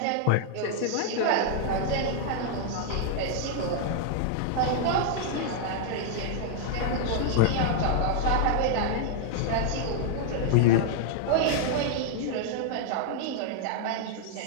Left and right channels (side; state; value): both; different; correlation -0.01